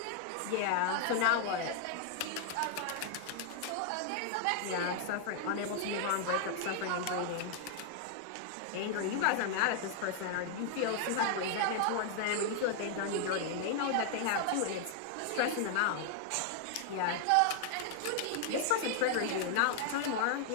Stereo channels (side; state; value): both; different; correlation 0.00